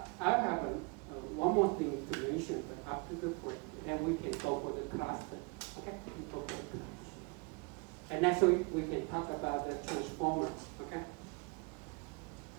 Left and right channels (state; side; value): quieter; left; 30.3 dB